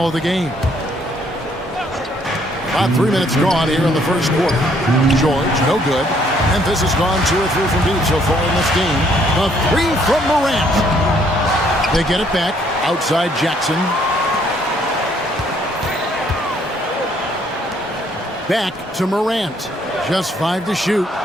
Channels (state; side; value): normal; both; correlation 0.66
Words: of the game. About 3 minutes gone here in the first quarter. George, no good. Memphis has gone 2 or 3 from deep so far in this game. A three from Morant. They get it back. Outside Jackson. Back to Morant. Just 5 to shoot.